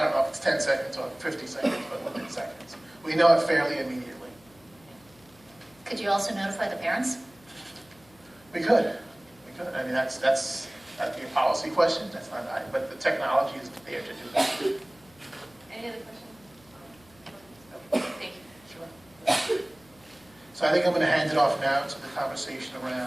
don't know if it's 10 seconds or 50 seconds, but within seconds. We know it fairly immediately. Could you also notify the parents? We could. I mean, that'd be a policy question. That's not, but the technology is there to do that. Any other questions? Thank you. Sure. So I think I'm going to hand it off now to the conversation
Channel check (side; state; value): left; noise; hum, 28 dB below the sound